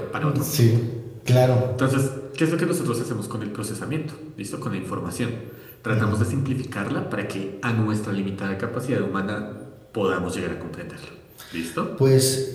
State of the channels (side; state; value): both; identical; correlation 1.00